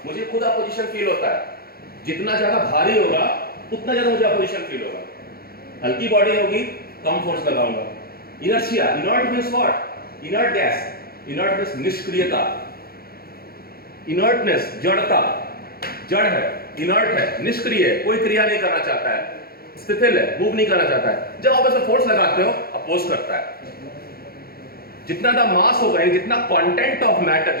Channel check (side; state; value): right; late; 0.44 ms